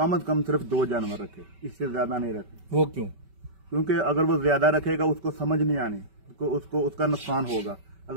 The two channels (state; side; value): late; left; 5.2 ms